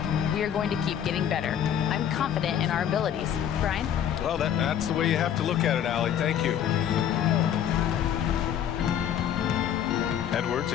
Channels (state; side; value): quieter; right; 9.6 dB